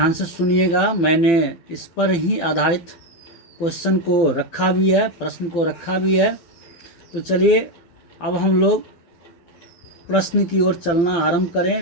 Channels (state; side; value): late; right; 12 ms